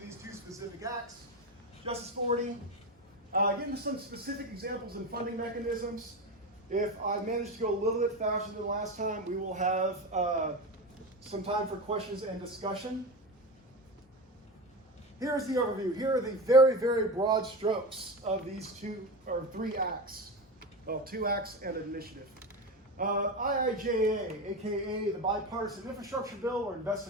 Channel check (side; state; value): both; normal; correlation 0.22